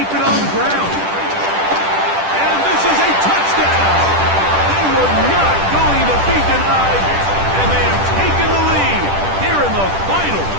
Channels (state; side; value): late; left; 10 ms